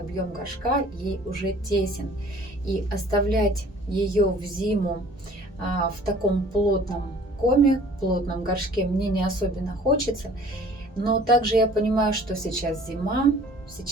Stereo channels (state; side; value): normal; both; correlation 0.51